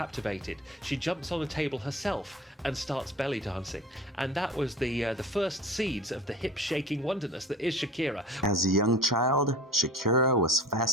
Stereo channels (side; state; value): both; normal; correlation 0.40